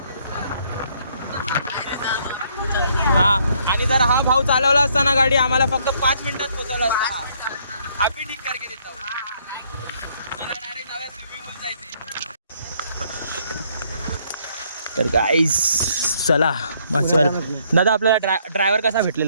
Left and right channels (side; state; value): both; inverted; correlation -0.67